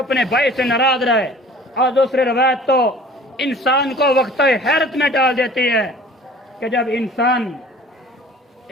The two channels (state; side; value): normal; both; correlation 0.47